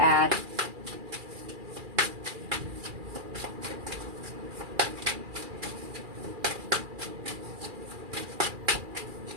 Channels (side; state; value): left; late; 2.4 ms